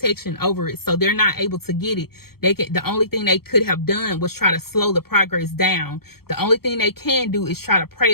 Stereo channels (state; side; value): late; right; 0.95 ms